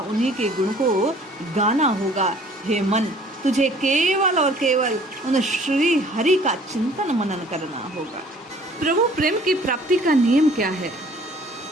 उन्हीं के गुण को गाना होगा। हे मन, तुझे केवल और केवल उन श्री हरि का चिंतन मनन करना होगा। प्रभु प्रेम की प्राप्ति का नियम क्या है?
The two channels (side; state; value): both; normal; correlation 0.54